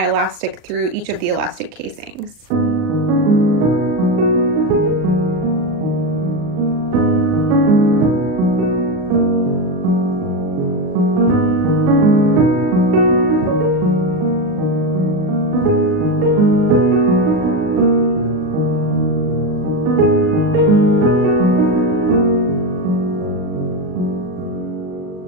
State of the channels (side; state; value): left; late; 39 ms